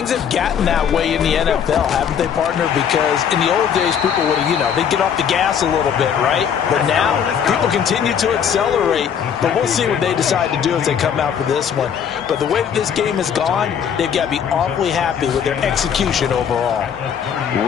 have gotten that way in the NFL, haven't they, partner? Because in the old days, people would, they'd get off the gas a little bit, right? But now, people continue to accelerate, but we'll see what they decide to do as they come out for this one. But the way that this game has gone, they've got to be awfully happy with their execution overall.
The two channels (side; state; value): right; quieter; 8.0 dB